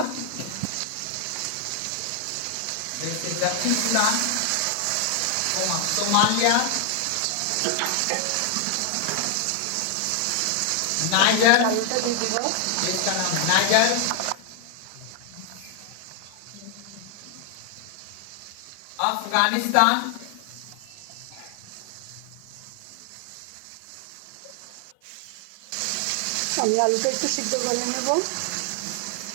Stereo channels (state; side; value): different; both; correlation 0.00